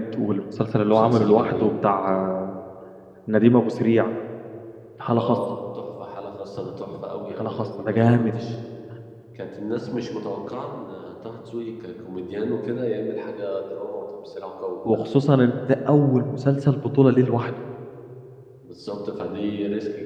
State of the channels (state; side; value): identical; both; correlation 1.00